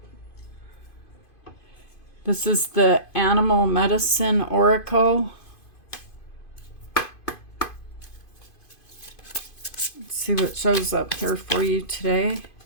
this is the Animal Medicine Oracle. Let's see what shows up here for you today.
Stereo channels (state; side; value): late; right; 2.5 ms